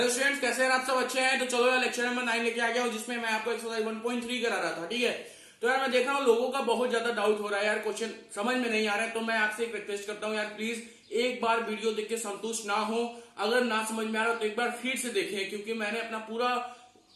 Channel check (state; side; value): identical; both; correlation 1.00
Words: students, कैसे हैं आप सब? अच्छे हैं? तो चलो यार लेक्चर नंबर 9 लेके आ गया हूँ, जिसमें मैं आपको एक्सरसाइज 1.3 करा रहा था। ठीक है, तो यार मैं देख रहा हूँ लोगों का बहुत ज्यादा डाउट हो रहा है यार, क्वेश्चन समझ में नहीं आ रहा है। तो मैं आपसे एक रिक्वेस्ट करता हूँ यार, प्लीज एक बार वीडियो देख के संतुष्ट ना हो। अगर ना समझ में आ रहा हो तो एक बार फिर से देखें, क्योंकि मैंने अपना